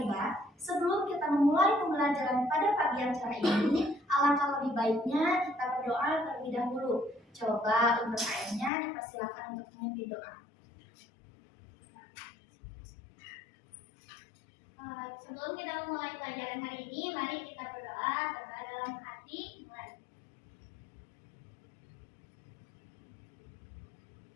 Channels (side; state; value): right; drops out; at 8.7 s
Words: sebelum kita memulai pembelajaran pada pagi yang cerah ini, alangkah lebih baiknya kita berdoa terlebih dahulu. Coba untuk ayahnya dipersilakan untuk memimpin doa. Sebelum kita memulai pelajaran hari ini, mari kita berdoa dalam hati. Mulai.